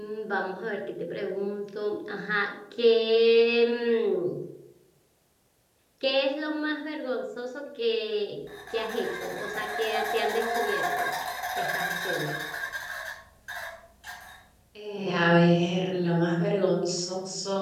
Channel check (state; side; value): identical; both; correlation 1.00